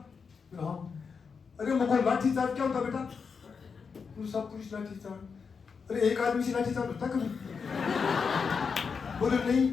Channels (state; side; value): quieter; right; 5.6 dB